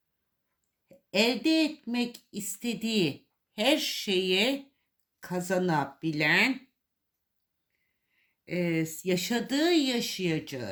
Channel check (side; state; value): both; identical; correlation 1.00